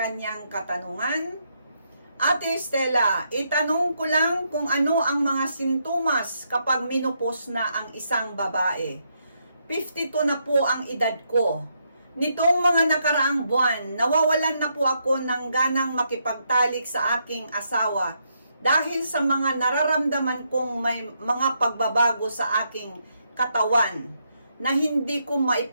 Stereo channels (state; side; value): inverted; both; correlation -0.78